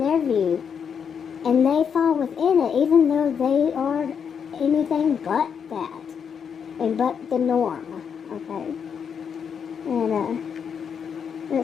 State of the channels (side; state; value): right; quieter; 7.1 dB